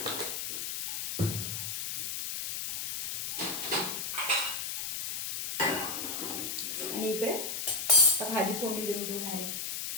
आणि इकडे आता भाजी फोडणी देऊ डायरेक्ट.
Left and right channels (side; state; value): left; noise; hiss, 4 dB below the sound